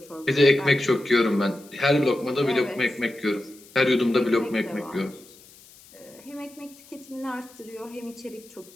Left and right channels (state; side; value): noise; left; hiss, 24 dB below the sound